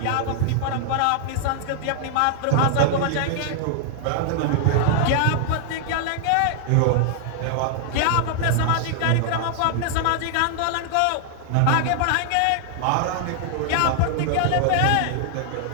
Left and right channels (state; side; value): different; both; correlation -0.01